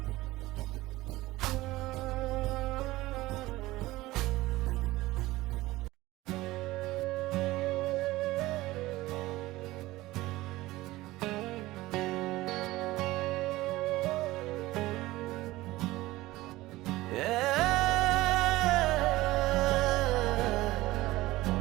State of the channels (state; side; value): quieter; left; 18.3 dB